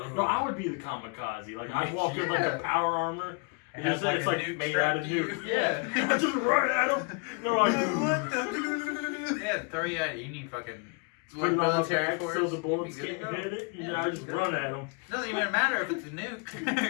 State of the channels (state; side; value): quieter; right; 35.1 dB